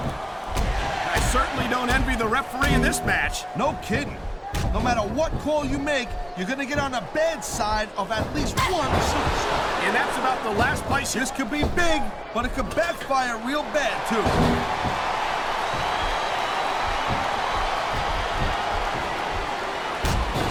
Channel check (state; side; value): identical; both; correlation 1.00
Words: I certainly don't envy the referee in this match. No kidding. No matter what call you make, you're going to get on the bad side of at least one superstar. And that's about the last place you... This could be big, but it could backfire real bad, too.